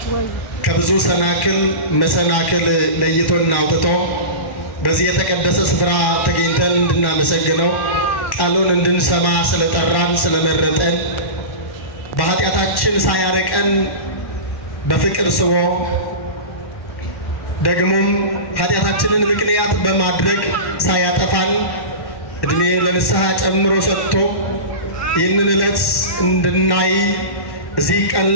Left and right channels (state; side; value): late; right; 1.1 ms